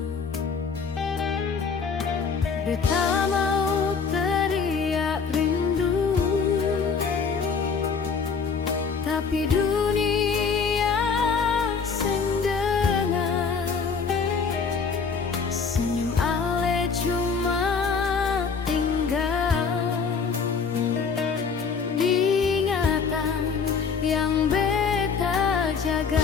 Beta mau teriak rindu, tapi dunia seng dengar. Senyum ale cuma tinggal diingatan yang beta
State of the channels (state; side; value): quieter; right; 5.5 dB